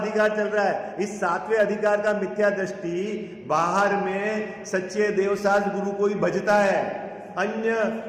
चल रहा है। इस सातवें अधिकार का मिथ्या दृष्टि बाहर में सच्चे देवसाज गुरु को ही भजता है, अन्य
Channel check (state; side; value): identical; both; correlation 1.00